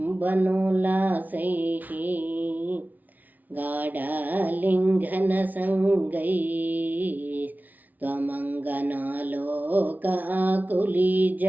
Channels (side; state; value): left; late; 0.079 ms